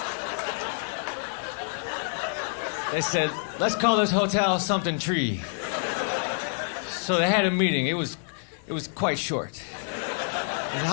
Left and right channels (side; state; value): right; silent; 60 dB below the other